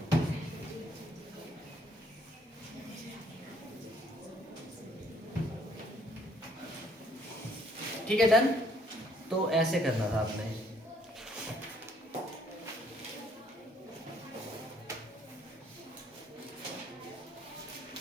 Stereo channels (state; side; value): normal; both; correlation 0.66